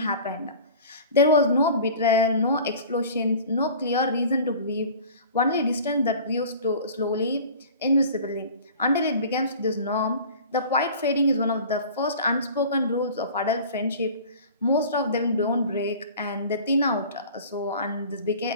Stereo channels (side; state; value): both; inverted; correlation -0.42